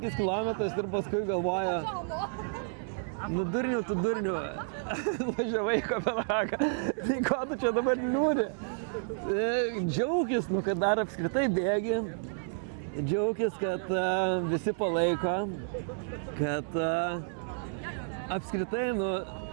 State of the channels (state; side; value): silent; left; 57 dB below the other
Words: km ir paskui galvoju, tu durniu, važiavai į Kopenhagą, tai ko tu čia dabar liūdi? Džiaugis, kad dar apskritai bėgi. Džiaugis, kad visi palaiko, kad apskritai,